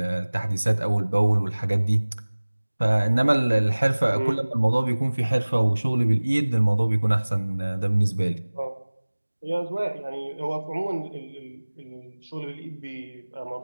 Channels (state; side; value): inverted; both; correlation -1.00